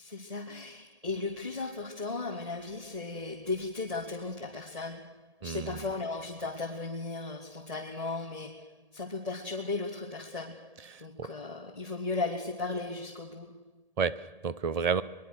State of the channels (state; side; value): late; left; 1.7 ms